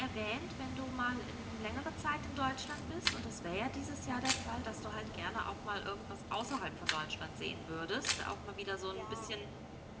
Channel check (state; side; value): identical; both; correlation 1.00